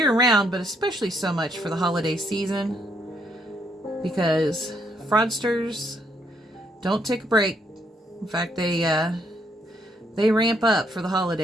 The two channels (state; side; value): normal; both; correlation 0.73